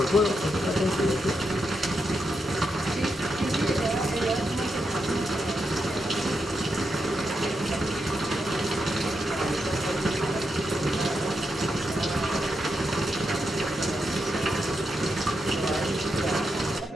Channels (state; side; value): normal; both; correlation 0.85